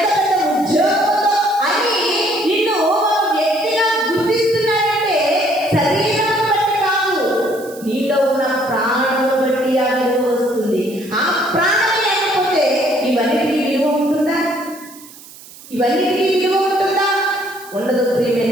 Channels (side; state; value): right; noise; hiss, 19 dB below the sound